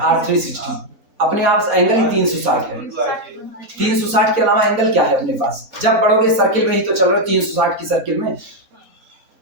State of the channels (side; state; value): left; late; 4.2 ms